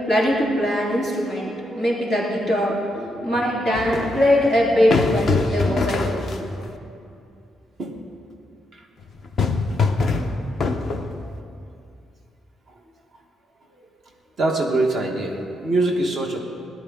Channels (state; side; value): normal; both; correlation 0.80